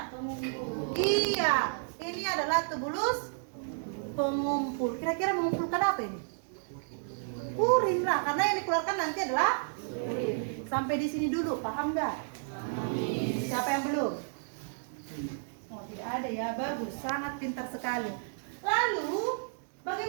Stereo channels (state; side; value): silent; left; digital silence